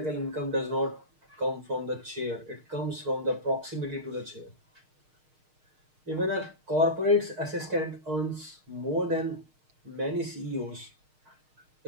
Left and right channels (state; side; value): late; left; 6.5 ms